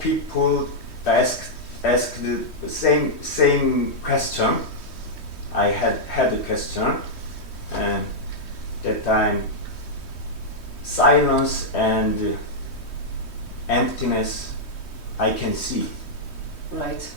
asked the same question. I had a question, and that time silence and emptiness I can see. Right.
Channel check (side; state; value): right; late; 3.1 ms